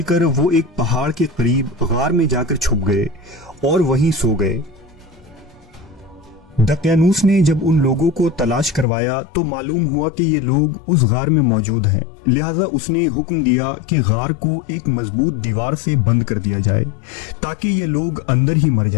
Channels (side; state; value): right; drops out; at 8.8 s